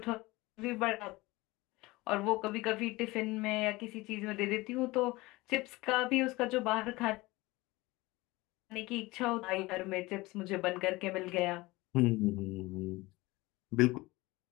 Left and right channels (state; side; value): quieter; right; 21.2 dB